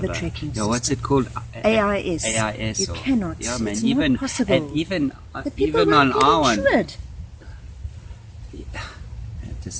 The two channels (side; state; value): both; identical; correlation 1.00